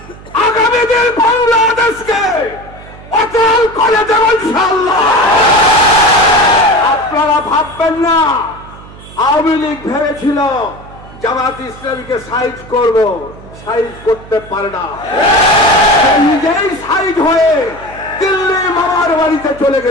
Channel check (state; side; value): noise; right; hum, 19 dB below the sound